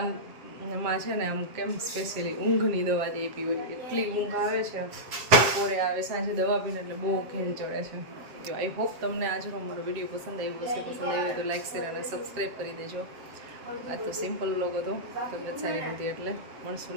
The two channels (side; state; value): left; late; 7.5 ms